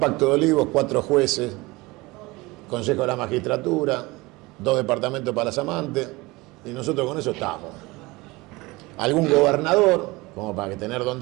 de olivos, 4 jueces, Consejo de la Magistratura, 2 departamentos para las amantes, y nosotros con eso estamos. Algún gobernador, como para tener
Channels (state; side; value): quieter; left; 22.4 dB